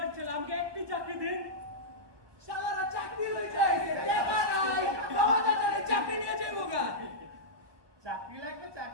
ছেলে, আমাকে একটি চাকরি দিন। শালারা চাকরি লই যাইছে, টাকা নাই, বাবা দাদারে চাকরি নিয়ে যাইবো গা। চাকরি লাগবে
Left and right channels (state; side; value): late; left; 1.2 ms